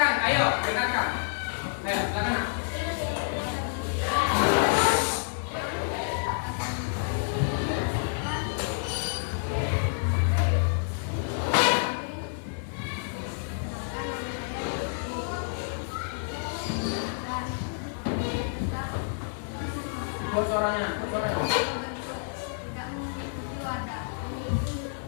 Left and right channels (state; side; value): silent; right; digital silence